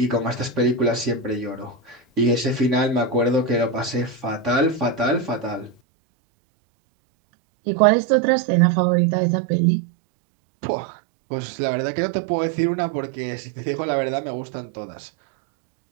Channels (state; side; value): drops out; left; at 5.8 s